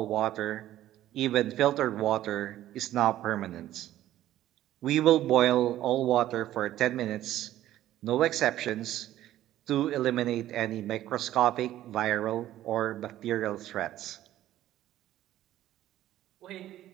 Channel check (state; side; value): quieter; left; 13.4 dB